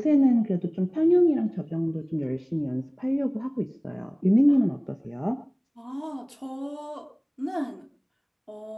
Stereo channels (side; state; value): both; identical; correlation 1.00